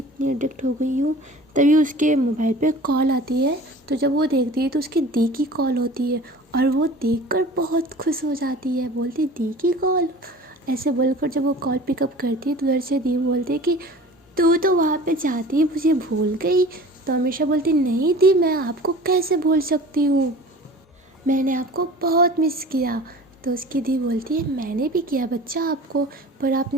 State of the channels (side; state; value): both; normal; correlation 0.42